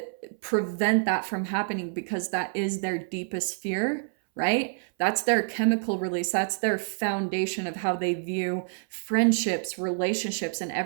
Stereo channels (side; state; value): left; silent; 60 dB below the other